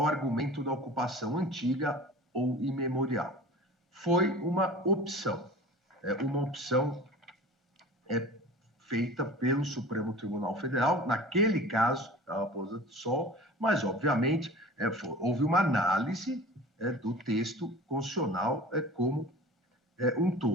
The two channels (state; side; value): normal; both; correlation 0.39